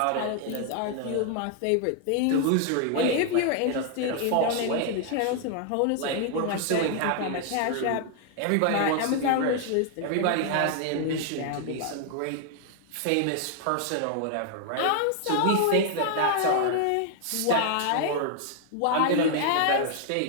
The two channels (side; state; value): both; different; correlation 0.00